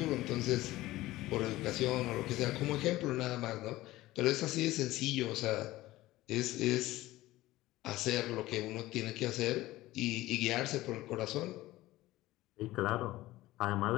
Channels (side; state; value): right; quieter; 17.2 dB